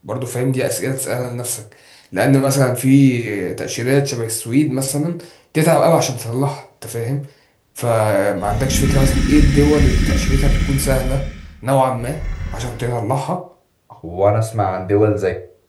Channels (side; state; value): both; identical; correlation 1.00